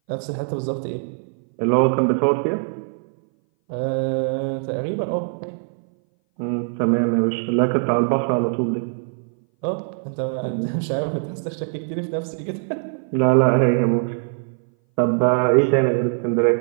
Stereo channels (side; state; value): left; silent; 60 dB below the other